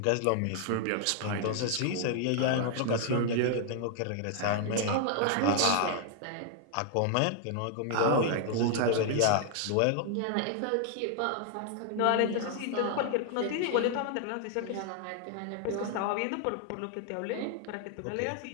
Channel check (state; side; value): different; both; correlation 0.00